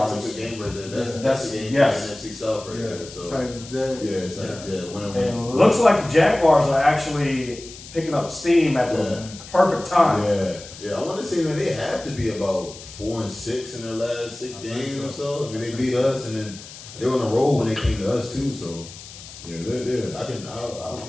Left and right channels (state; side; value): noise; left; hiss, 16 dB below the sound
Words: That's a good game right there. That's the game yes. for the NFC South right there. So Titans, Jags. yeah, it's like And it looks like the Jaguars are actually picking up steam at the perfect time. Yeah. I want to say, man, they have to be about 4-6 in their last 6 games or so. I mean, they beat us, and then they were on a roll when they came to us too. So yeah, they're I'm